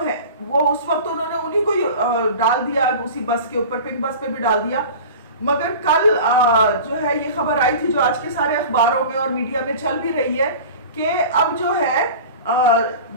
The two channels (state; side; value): inverted; both; correlation -0.37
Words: वो उस वक्त उन्होंने उन्हीं को डाल दिया उसी बस के ऊपर, पिंक बस पे भी डाल दिया। मगर कल जो है ये खबर आई थी जो आज के सारे अखबारों में और मीडिया में चल भी रही है कि अब जो है